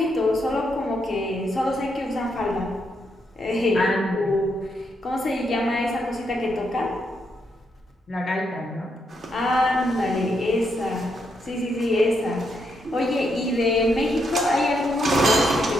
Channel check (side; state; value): both; normal; correlation 0.79